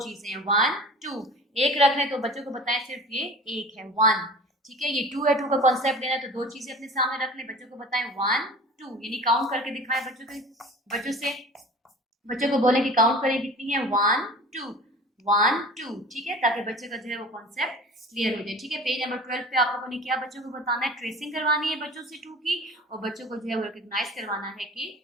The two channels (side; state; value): both; normal; correlation 0.40